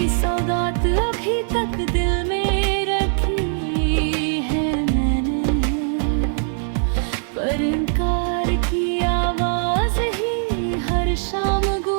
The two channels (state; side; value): silent; left; 64 dB below the other